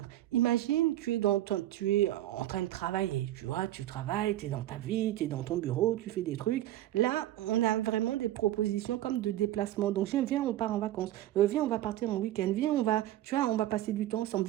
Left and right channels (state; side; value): quieter; left; 13.9 dB